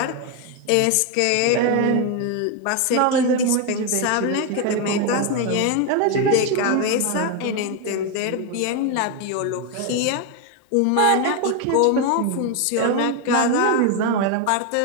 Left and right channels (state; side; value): different; both; correlation 0.01